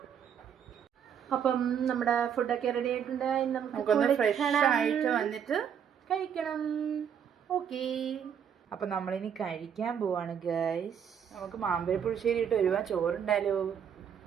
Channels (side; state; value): left; quieter; 8.1 dB